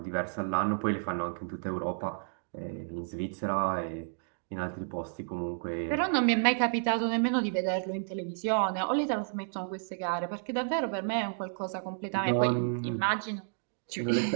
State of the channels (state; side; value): silent; left; digital silence